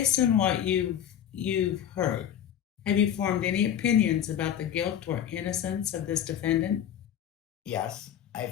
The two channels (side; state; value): right; quieter; 9.9 dB